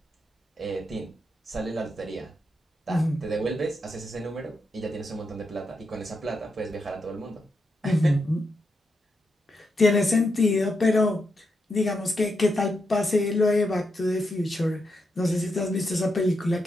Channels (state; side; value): normal; both; correlation 0.84